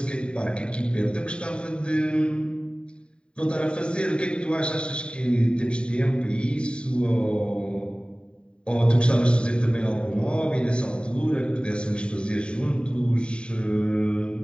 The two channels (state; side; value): late; right; 0.052 ms